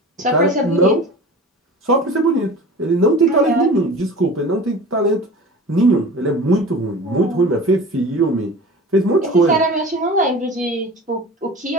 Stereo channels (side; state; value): both; normal; correlation 0.37